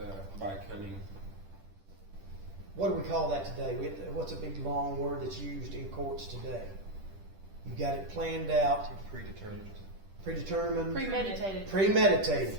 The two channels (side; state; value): left; late; 10 ms